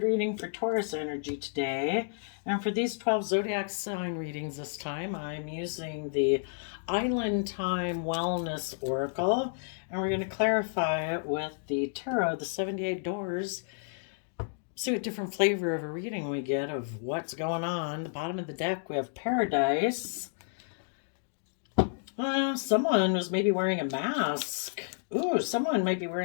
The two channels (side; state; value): right; silent; digital silence